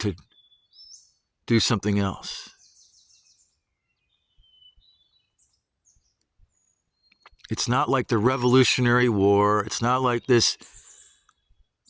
do something else. It's not like the Revolutionary War. It's not like this,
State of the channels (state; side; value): identical; both; correlation 1.00